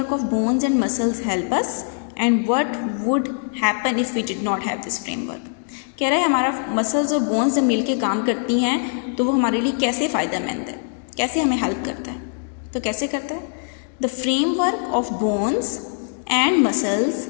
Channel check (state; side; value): silent; right; digital silence